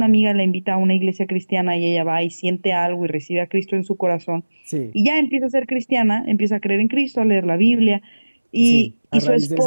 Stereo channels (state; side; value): inverted; both; correlation -1.00